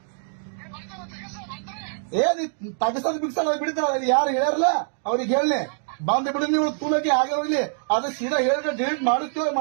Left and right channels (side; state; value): left; silent; digital silence